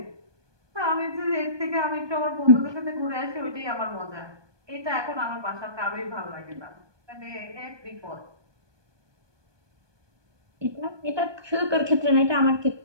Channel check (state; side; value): late; left; 1.2 ms